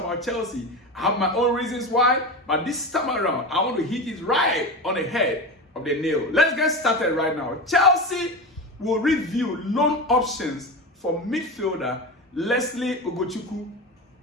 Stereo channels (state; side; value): normal; both; correlation 0.23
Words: Chelsea. I have my own reasons why, but this time around, I want to hit it right on the head of the nail. Let's get started right now. Chelsea will review loan options for midfielder Lesley Ugochukwu